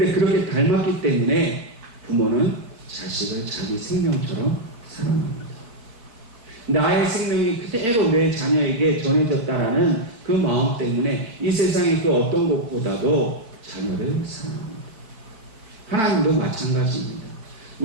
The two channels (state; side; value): late; left; 4.5 ms